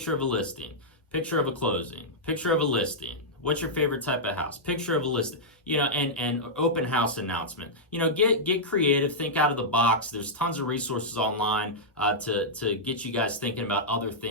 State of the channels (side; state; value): both; normal; correlation -0.09